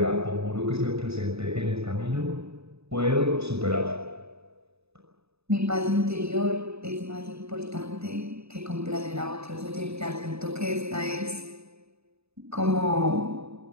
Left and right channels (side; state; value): left; late; 0.79 ms